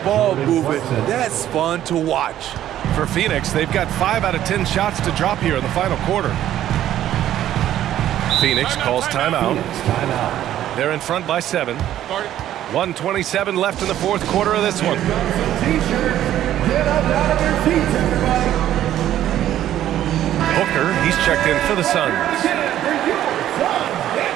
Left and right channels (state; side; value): quieter; left; 12.1 dB